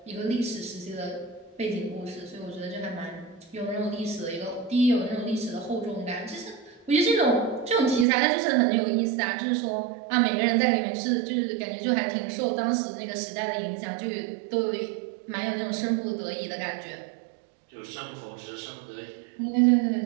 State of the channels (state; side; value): drops out; left; at 8.1 s